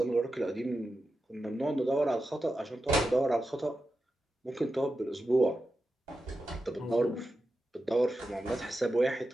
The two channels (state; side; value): normal; both; correlation 0.90